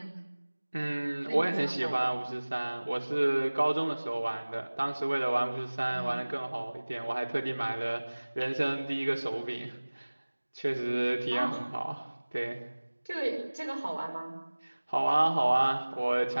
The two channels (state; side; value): inverted; both; correlation -1.00